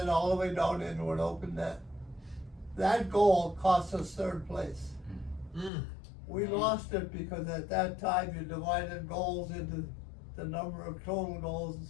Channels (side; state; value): right; drops out; at 5.7 s